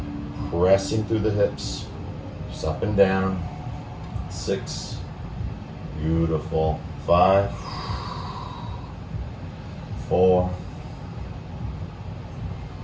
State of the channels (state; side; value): identical; both; correlation 1.00